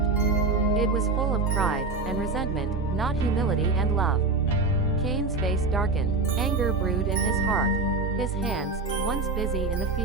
It was full of pride and resentment, not humility and love. Cain's face darkened, anger brewed in his heart. His hands, once busy in the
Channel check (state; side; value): quieter; left; 3.8 dB